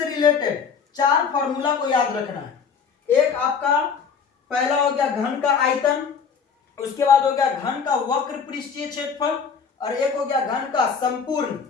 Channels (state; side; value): quieter; right; 6.1 dB